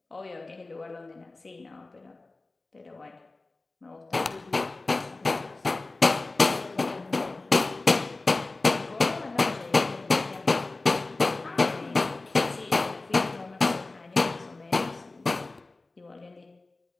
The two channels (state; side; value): quieter; right; 3.3 dB